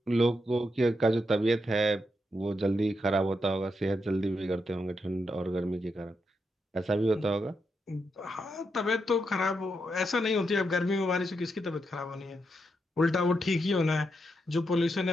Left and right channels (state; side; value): normal; both; correlation 0.83